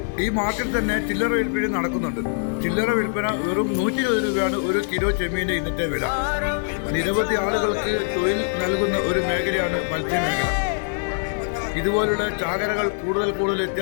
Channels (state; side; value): silent; right; digital silence